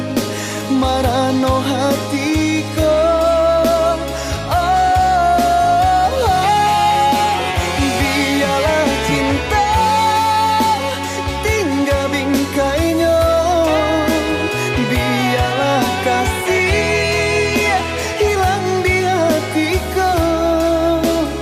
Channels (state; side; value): identical; both; correlation 1.00